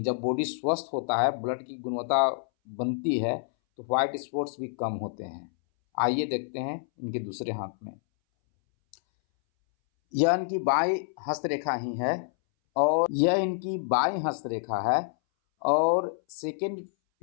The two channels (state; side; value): silent; right; 59 dB below the other